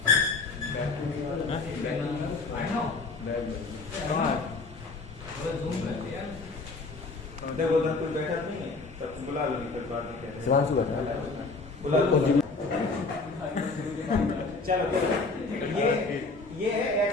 आई नो जूम कर दिया देखो उधर कोई बैठा नहीं है, सब बुला लो, नहीं बात नहीं कहते शिवांशु बैठा बुला लो। चलो ये है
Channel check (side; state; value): right; quieter; 3.8 dB